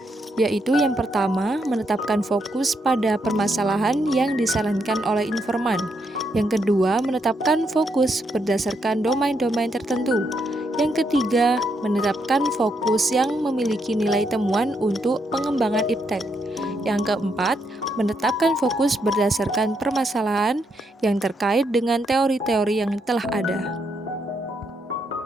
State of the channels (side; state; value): both; normal; correlation 0.78